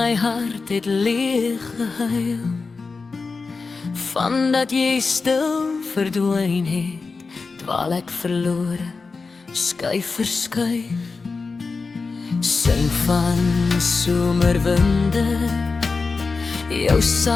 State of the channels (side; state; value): right; quieter; 4.3 dB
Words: hart het leeg gehuil vandat jy stil verdwyn het, dwaal ek verlore, skuif verskuif. Sing van somerwinde, jou